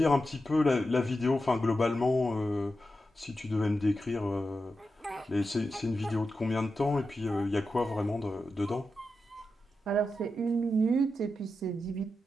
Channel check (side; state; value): both; normal; correlation 0.89